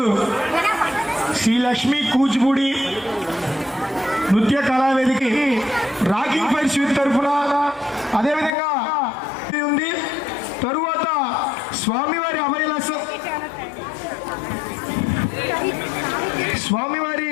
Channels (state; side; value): drops out; right; at 8.5 s